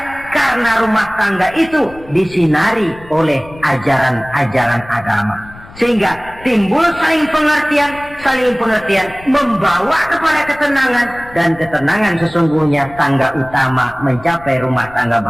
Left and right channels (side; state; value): left; noise; rumble, 20 dB below the sound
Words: karena rumah tangga itu disinari oleh ajaran-ajaran agama. Sehingga timbul saling pengertian membawa kepada ketenangan, dan ketenangan sesungguhnya tangga utama mencapai rumah tangga